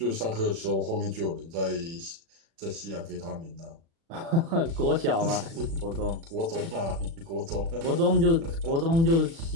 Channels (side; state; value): left; late; 36 ms